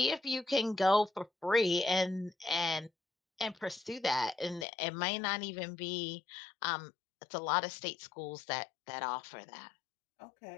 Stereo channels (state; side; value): drops out; right; at 4.7 s